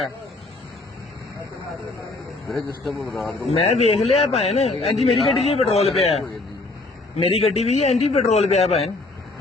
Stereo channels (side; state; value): right; quieter; 3.2 dB